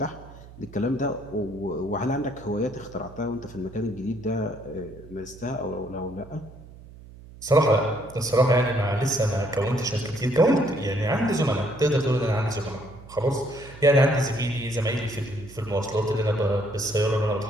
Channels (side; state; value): right; noise; hum, 19 dB below the sound